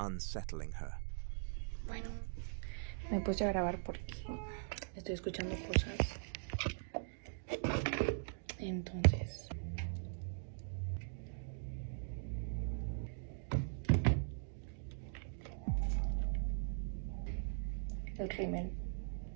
her. Bueno, me puse a grabar porque estoy escuchando cosas. Entonces... el rímel.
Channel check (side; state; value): left; silent; digital silence